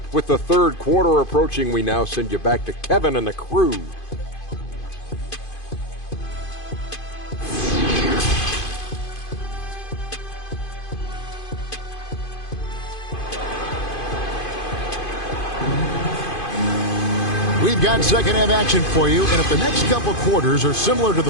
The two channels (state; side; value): late; right; 2.5 ms